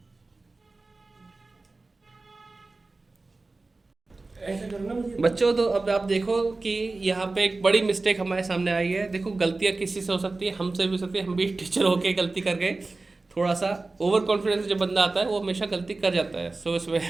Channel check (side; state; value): left; quieter; 3.4 dB